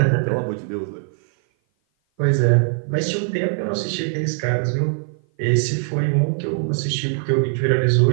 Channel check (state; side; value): silent; left; 56 dB below the other